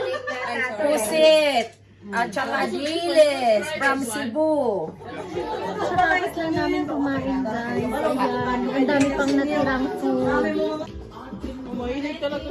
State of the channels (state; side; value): identical; both; correlation 1.00